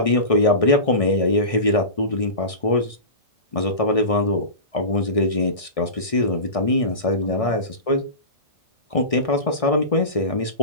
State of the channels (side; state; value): right; late; 1.6 ms